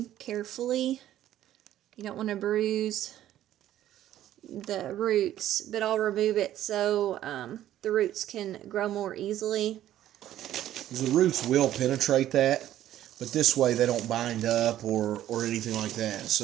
carefully. You don't want to bruise the roots, but I'll remove it so the roots can grow more easily. The roots will penetrate that, but this way they don't bind up or anything like that.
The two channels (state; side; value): quieter; left; 12.6 dB